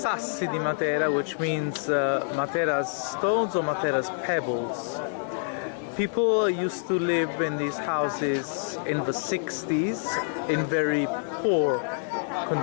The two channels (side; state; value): right; silent; digital silence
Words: di Matera, which means Matera's stones or Matera's pebbles. People used to live in these houses in the 60s in very poor